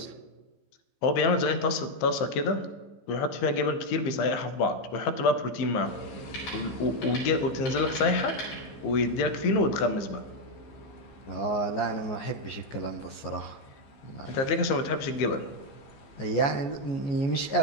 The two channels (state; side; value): late; right; 15 ms